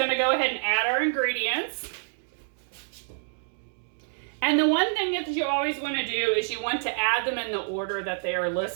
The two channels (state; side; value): silent; left; digital silence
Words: to go ahead and add our ingredients. And the one thing that you always want to do is you want to add them in the order that they are